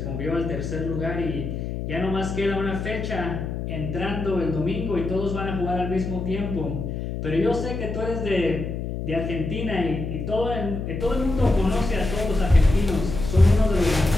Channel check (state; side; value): noise; left; hum, 5 dB below the sound